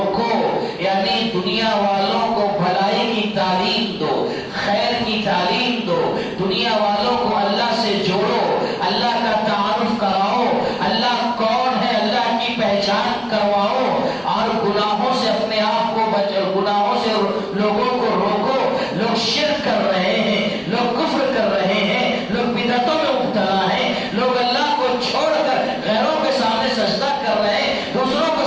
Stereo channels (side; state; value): both; identical; correlation 1.00